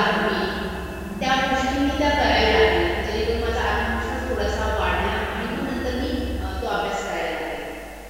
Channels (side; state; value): both; identical; correlation 1.00